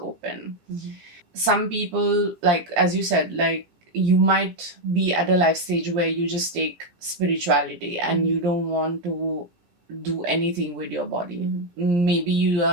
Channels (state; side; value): late; left; 17 ms